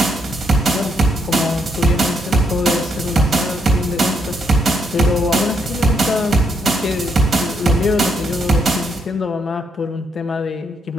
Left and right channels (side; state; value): both; normal; correlation 0.76